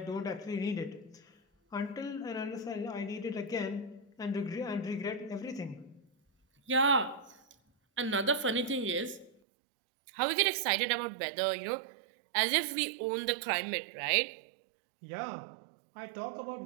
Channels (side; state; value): left; drops out; at 9.3 s